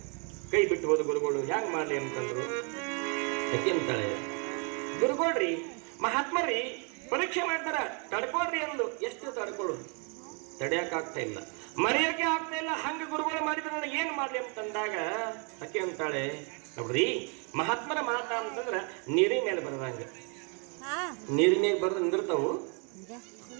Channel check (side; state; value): left; quieter; 36.2 dB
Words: ಕೈ ಬಿಟ್ಟು ಹೋದ ಗುರುಗಳು. ಹೆಂಗ್ ಮಾಡ್ಲಿ ಅಂತಂದ್ರು. ಯಾಕೆ ಅಂತಾಳೆ, ಗುರುಗಳ್ರಿ ಮಹಾತ್ಮರಿ ಪರೀಕ್ಷೆ ಮಾಡ್ತಾರ, ತಡ್ಕೊಳ್ರಿ ಅಂದು. ಎಷ್ಟು ತಡ್ಕೊಳ್ಳೋದು? ತಡೆಯಕ್ಕಾಗ್ತಾ ಇಲ್ಲ. ಮರೆಯೋಕೆ ಆಗ್ತಾ ಇಲ್ಲ. ಹಂಗ ಗುರುಗಳು ಮಾಡಿದ್ರೆ ನನಗೆ ಏನ್ ಮಾಡ್ಲಿ ಅಂತಂದಾಗ ಅಕ್ಕಿ ಅಂತಾಳೆ, ನೋಡ್ರಿ ಮಹಾತ್ಮರ ಮಾತ ಅಂತಂದ್ರ ನೀರಿನ ಮೇಲೆ ಬರದಂಗ, ನೀರಿನ ಮೇಲೆ ಬರೆದು ನಿಂದಿರ್ತಾವು,